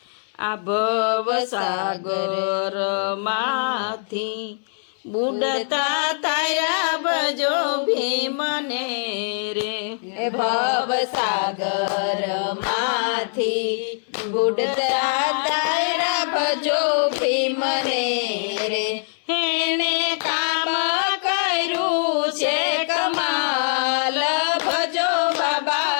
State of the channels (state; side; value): silent; right; 64 dB below the other